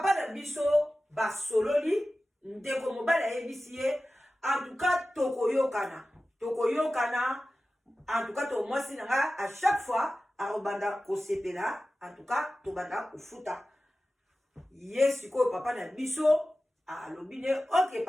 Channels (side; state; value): both; normal; correlation 0.95